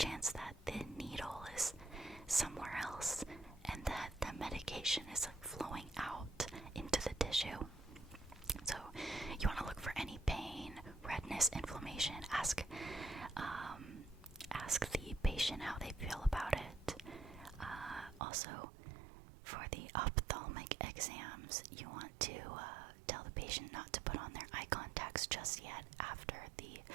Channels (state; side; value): drops out; left; at 18.2 s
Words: that the needle is somewhere else, and that the medication is flowing out into the tissue. So you want to look for any pain, redness, inflammation. Ask the patient how they feel about it. Also, for the ophthalmic exams, you want to tell the patient not to put on their eye contacts just yet after the